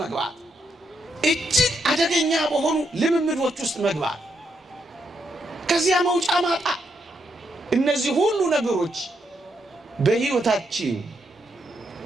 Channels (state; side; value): normal; both; correlation 0.79